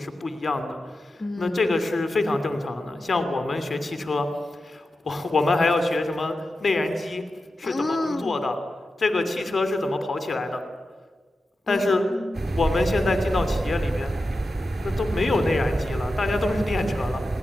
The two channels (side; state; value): both; normal; correlation 0.91